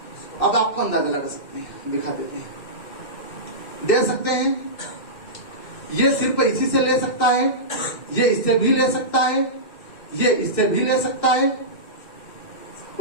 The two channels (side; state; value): right; late; 2.6 ms